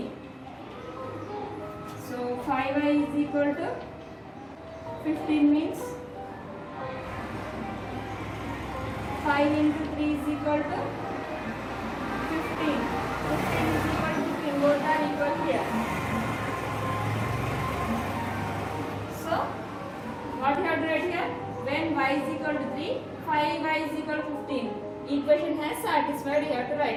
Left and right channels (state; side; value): identical; both; correlation 1.00